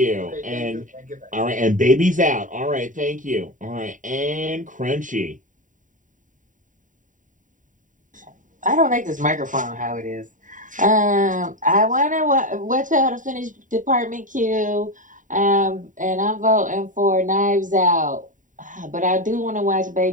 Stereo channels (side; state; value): left; late; 0.38 ms